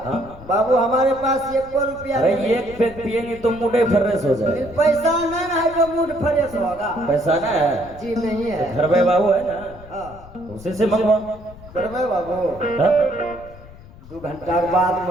हाँ बाबू हमारे पास एक रुपया अरे नहीं। एक पैक पियेंगे तो मुंडे फर्रेस हो जाए। पैसा नहीं है जो मूड फ्रेश होगा। पैसा ना है? जी नहीं है। घर में बाबू है ना हाँ उसी से मंगवा। करवे बाबू हाँ? 2 घंटा के बाद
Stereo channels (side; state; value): left; noise; rumble, 19 dB below the sound